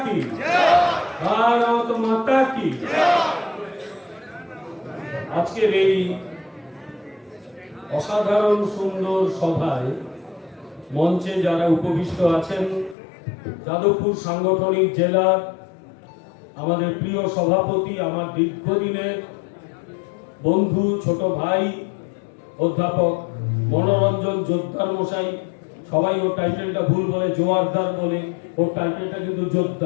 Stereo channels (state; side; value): drops out; right; at 13.0 s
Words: কি, ভারত মাতা কি। আজকের এই অসাধারণ সুন্দর সভায় মঞ্চে যারা উপবিষ্ট আছেন, যাদবপুর সাংগঠনিক জেলার আমাদের প্রিয় সভাপতি, আমার দীর্ঘদিনের বন্ধু, ছোট ভাই অধ্যাপক মনোরঞ্জন জোদ্দার মশাই, সবাই ওর টাইটেলটা ভুল বলে, জোয়ারদার বলে, ওর টাইটেলটা কিন্তু